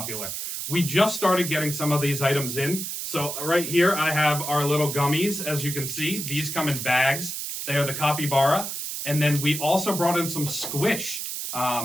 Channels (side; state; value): right; noise; hiss, 5 dB below the sound